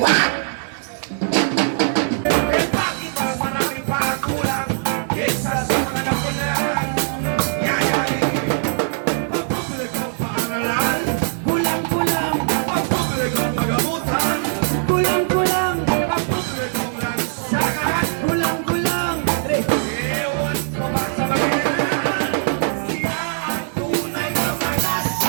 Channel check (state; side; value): silent; left; digital silence